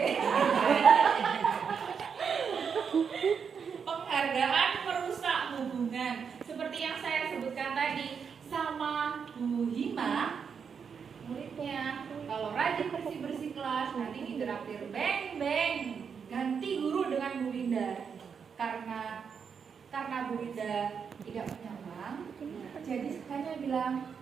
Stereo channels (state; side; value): quieter; left; 6.5 dB